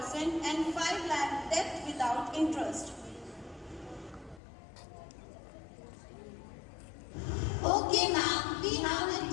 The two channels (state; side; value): drops out; right; at 4.4 s